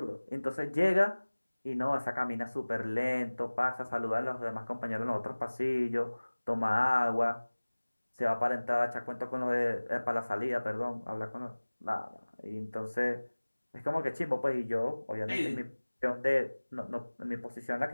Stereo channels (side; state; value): both; inverted; correlation -1.00